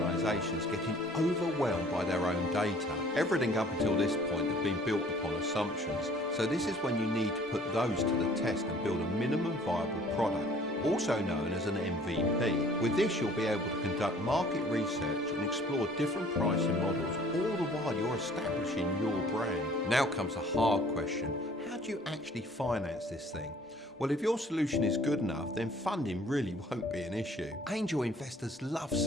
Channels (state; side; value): normal; both; correlation 0.54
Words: getting overwhelmed by their own data. Everything up until this point had been built upon assumptions, so this is when you need to put those to the test and build a minimum viable product. also known as an MVP. With this, you'll be able to conduct market research and explore different pricing models, all the while you're establishing your brand. Now comes a hard question. How do you actually finance this thing? Well, if your solution is good enough, then funding really won't be an issue. Angel investors love